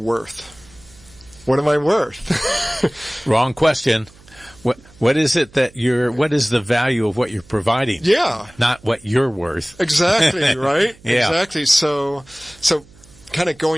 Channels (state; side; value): noise; right; hum, 26 dB below the sound